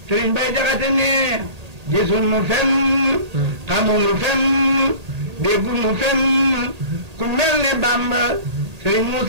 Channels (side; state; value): left; late; 1.8 ms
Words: sëñ Bay Jaxate ne gisul nu fenn xamul nu fenn déggu nu fenn ku mel ne Bamba sëñ